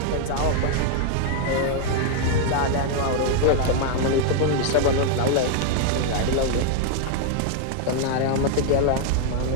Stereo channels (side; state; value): both; different; correlation 0.00